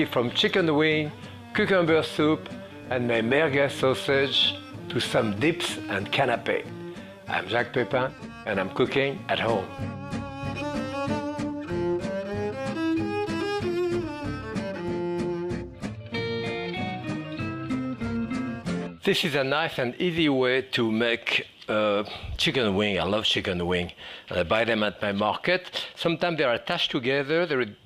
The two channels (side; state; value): both; identical; correlation 1.00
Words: from chicken wing, cucumber soup, and my merguez sausage to some dips and canapé. I'm Jacques Pépin and I'm cooking at home. This is a nice and easy way to make chicken wing. I love chicken wing. And I buy them at my market. Sometimes they are attached together. There is